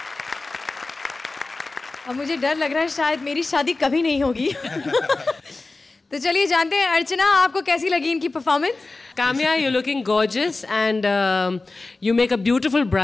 अब मुझे डर लग रहा है शायद मेरी शादी कभी नहीं होगी। तो चलिए जानते हैं, अर्चना आपको कैसी लगी इनकी performance? Kamya, you looking gorgeous and you make a beautiful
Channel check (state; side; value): quieter; right; 3.4 dB